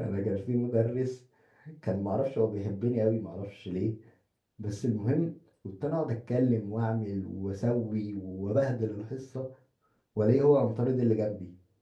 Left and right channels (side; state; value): both; identical; correlation 1.00